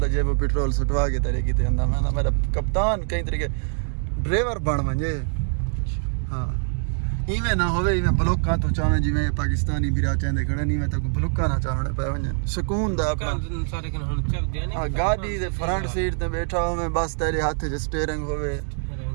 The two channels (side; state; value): left; silent; 57 dB below the other